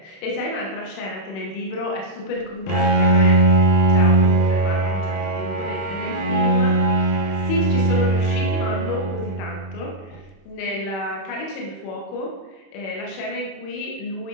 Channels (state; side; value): late; right; 31 ms